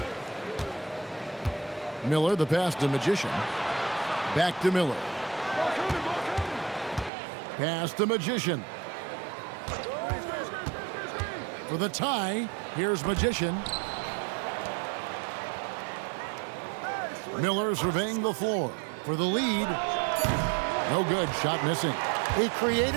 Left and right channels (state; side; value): drops out; left; at 7.1 s